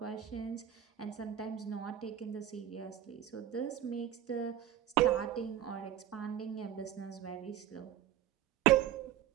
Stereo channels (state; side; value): quieter; left; 10.9 dB